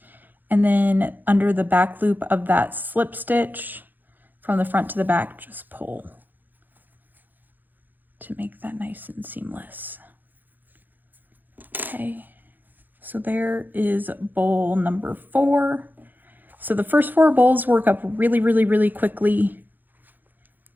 And then under the back loop of that slip stitch from the front to the back, just pull to make that nice and seamless. Okay, so there is bowl number 4. So the first 4 bowls work up really quickly,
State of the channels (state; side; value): late; left; 0.087 ms